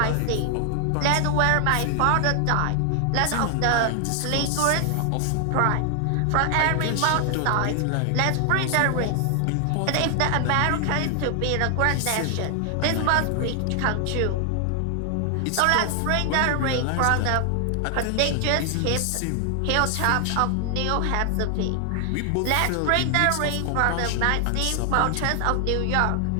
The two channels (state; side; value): different; both; correlation 0.00